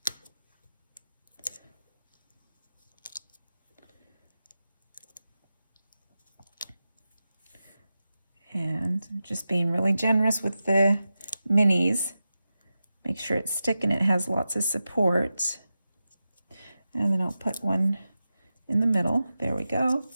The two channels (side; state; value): both; inverted; correlation -0.92